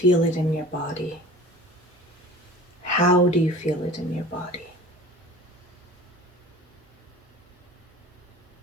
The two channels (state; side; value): normal; both; correlation 0.41